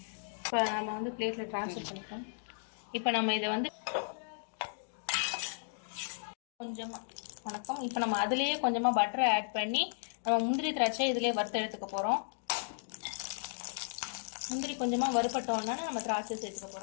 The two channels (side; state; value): right; silent; digital silence